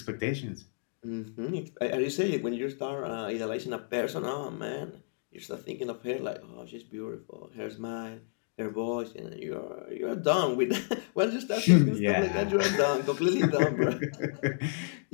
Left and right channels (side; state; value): right; silent; digital silence